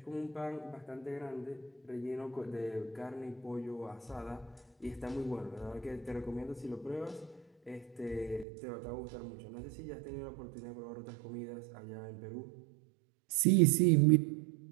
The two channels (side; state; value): left; drops out; at 8.5 s